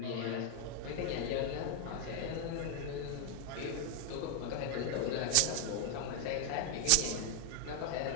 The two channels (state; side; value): different; both; correlation 0.00